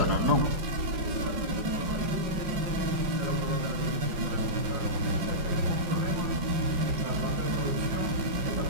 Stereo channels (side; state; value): left; late; 5.2 ms